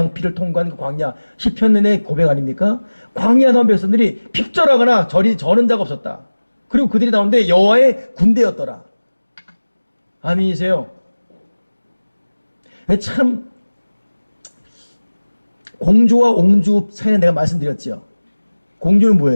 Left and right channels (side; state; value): both; inverted; correlation -1.00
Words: 피를 통과한 그 광야 시편의 고백 아닙니까? 광야 나온 백성들이 핍절하거나 저는 자가 없었다. 그리고 그들이 나오는데 여호와의 군대였더라. 아멘이세요? 참 공주와 옹주 사이에 내가 말씀드렸죠. 공주는